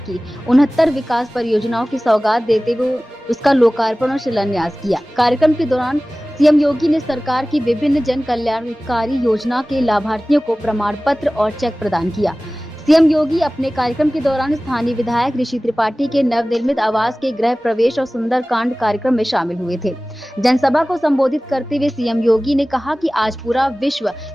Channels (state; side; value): normal; both; correlation 0.98